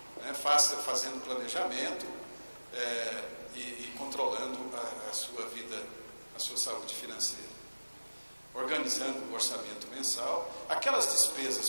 Né? Fazendo planejamento e controlando a sua vida, a sua saúde financeira. Organizando o orçamento mensal. Aquelas despesas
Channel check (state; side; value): inverted; both; correlation -1.00